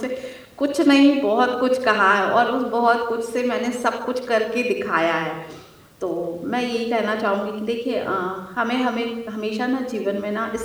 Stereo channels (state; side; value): identical; both; correlation 1.00